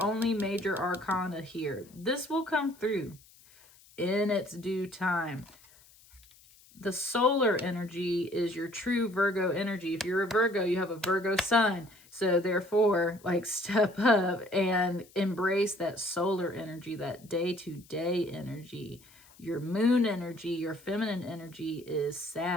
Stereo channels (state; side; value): noise; left; hiss, 26 dB below the sound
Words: only major arcana here. This will come through in its due time. The solar energy is your true Virgo energy. If you're a Virgo, you have a Virgo sun. So therefore, like, step up and embrace that solar energy, that day-to-day energy. Your moon energy, your feminine energy is